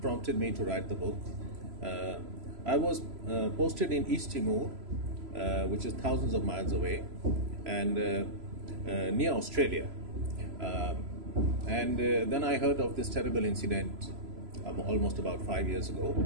me to write the book. I was posted in East Timor, which is thousands of miles away, and near Australia. Then I heard of this terrible incident almost about 5 years ago.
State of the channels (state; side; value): late; left; 3.0 ms